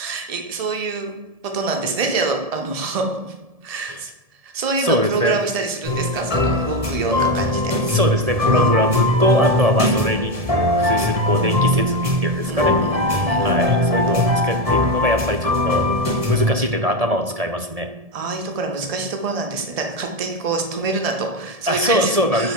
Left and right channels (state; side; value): late; left; 1.7 ms